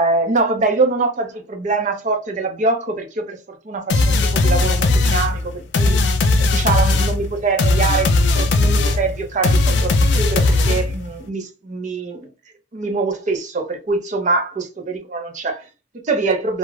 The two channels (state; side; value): normal; both; correlation 0.48